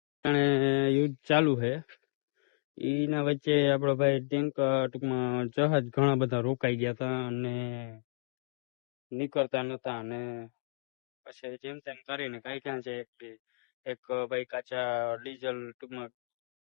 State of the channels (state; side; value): silent; right; digital silence